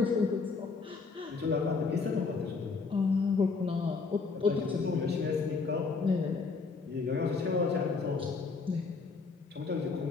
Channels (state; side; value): quieter; right; 4.5 dB